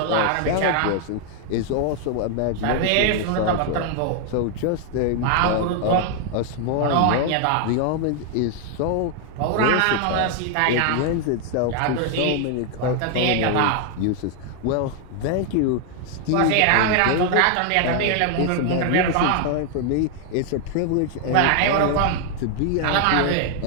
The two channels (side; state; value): both; different; correlation 0.00